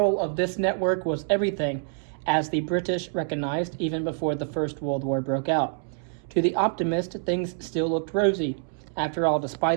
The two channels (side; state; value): left; silent; digital silence